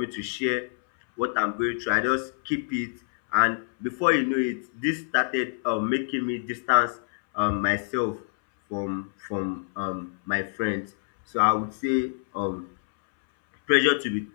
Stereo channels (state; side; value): silent; right; 61 dB below the other